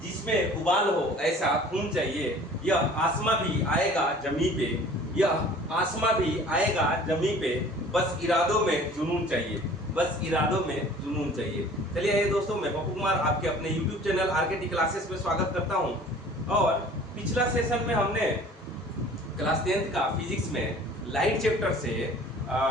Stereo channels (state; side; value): normal; both; correlation 0.48